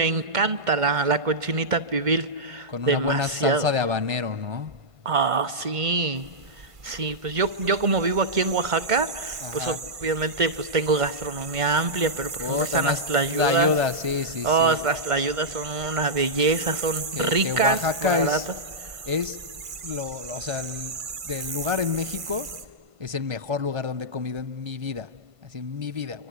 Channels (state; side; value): late; left; 1.5 ms